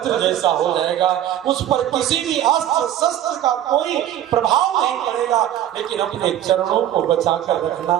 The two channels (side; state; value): left; quieter; 11.7 dB